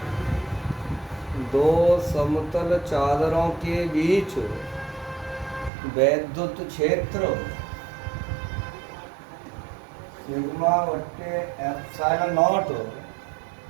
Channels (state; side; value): drops out; left; at 5.7 s